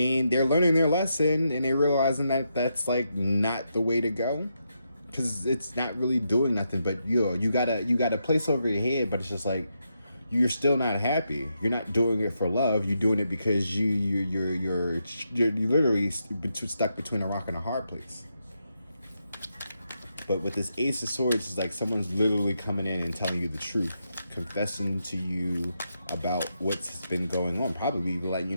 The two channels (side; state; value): both; inverted; correlation -0.83